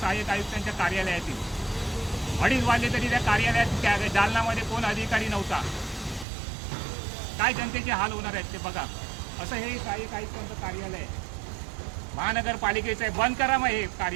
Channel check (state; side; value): drops out; left; at 6.2 s